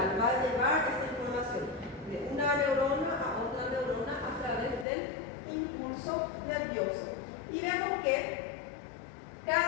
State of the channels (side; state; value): right; drops out; at 4.9 s